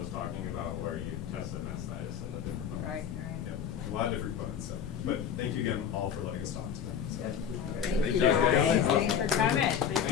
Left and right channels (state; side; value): quieter; right; 8.3 dB